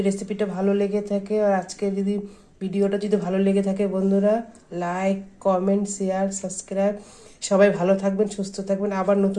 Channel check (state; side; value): identical; both; correlation 1.00